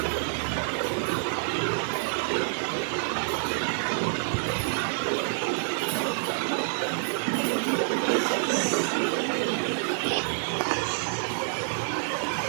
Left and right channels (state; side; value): silent; left; digital silence